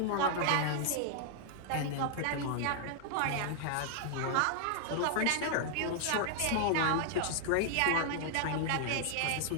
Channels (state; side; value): different; both; correlation -0.01